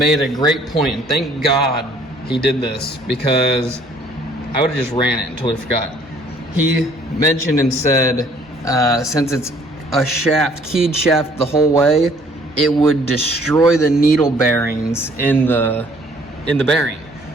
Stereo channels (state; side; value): normal; both; correlation 0.59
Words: a great point, and thank God he did this, because I would have just ran it and totally forgot. He mentioned and said, since it's a shaft, keyed shaft the whole way, it would destroy the needle bearings in the in the bearing,